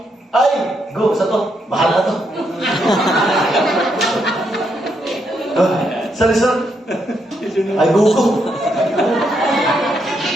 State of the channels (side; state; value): both; normal; correlation 0.78